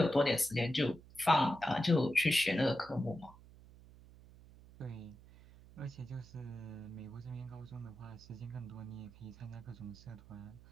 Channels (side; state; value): right; noise; hum, 21 dB below the sound